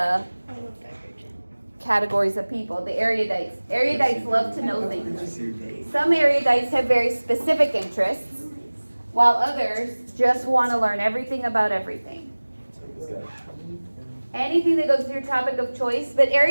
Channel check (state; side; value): inverted; both; correlation -1.00